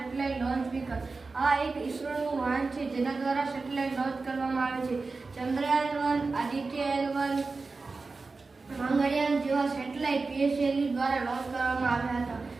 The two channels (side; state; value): left; quieter; 4.0 dB